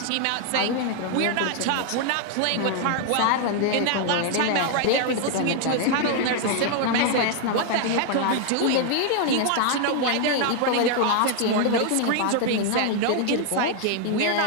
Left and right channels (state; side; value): different; both; correlation 0.00